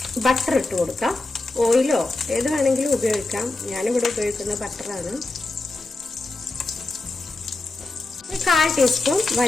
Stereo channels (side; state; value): right; quieter; 3.1 dB